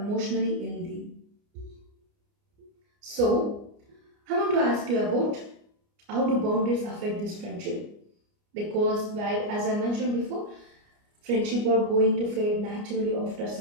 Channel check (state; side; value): late; left; 29 ms